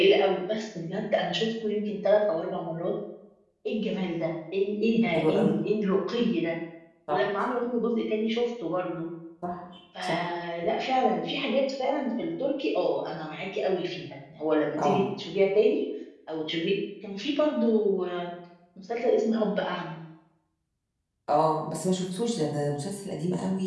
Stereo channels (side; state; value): both; identical; correlation 1.00